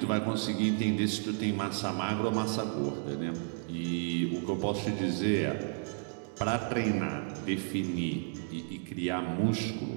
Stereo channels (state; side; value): silent; left; 56 dB below the other